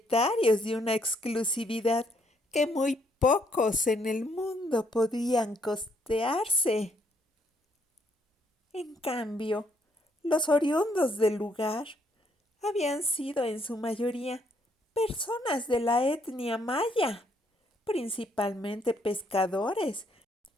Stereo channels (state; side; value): normal; both; correlation 0.71